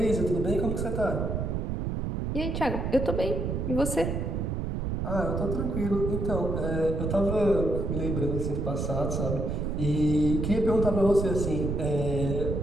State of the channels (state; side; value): noise; right; rumble, 1 dB below the sound